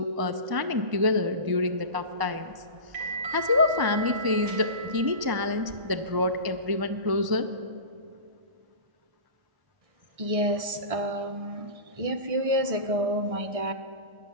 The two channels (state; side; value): late; left; 1.0 ms